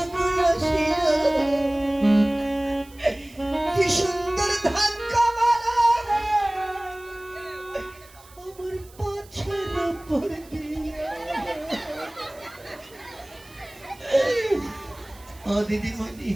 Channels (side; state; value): right; noise; hiss, 24 dB below the sound